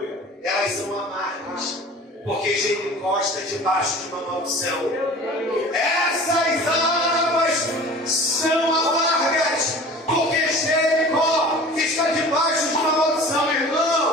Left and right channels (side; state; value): both; normal; correlation 0.42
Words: elas são amargas, porque Jericó está debaixo de uma maldição. Essas águas são amargas, porque Jericó está debaixo de uma maldição,